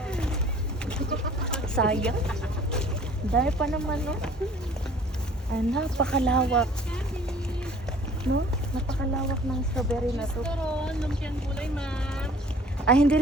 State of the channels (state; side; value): normal; both; correlation 0.51